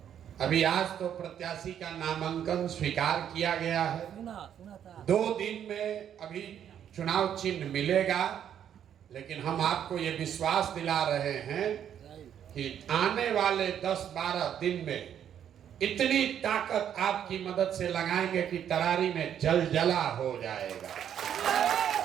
अभी आज तो प्रत्याशी का नामांकन स्वीकार किया गया है। 2 दिन में अभी चुनाव चिन्ह मिलेगा, लेकिन हम आपको ये विश्वास दिला रहे हैं कि आने वाले 10-12 दिन में इतनी ताकत आपकी मदद से लगाएंगे कि तरारी में जलजला हो जाएगा।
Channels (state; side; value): quieter; left; 9.4 dB